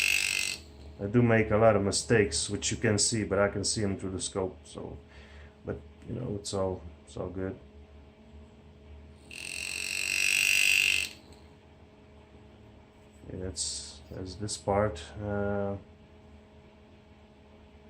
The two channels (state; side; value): identical; both; correlation 1.00